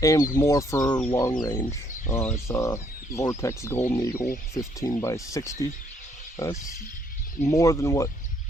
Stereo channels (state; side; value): normal; both; correlation 0.68